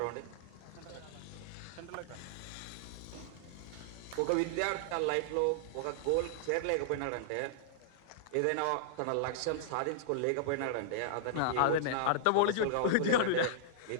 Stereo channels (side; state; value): both; different; correlation -0.01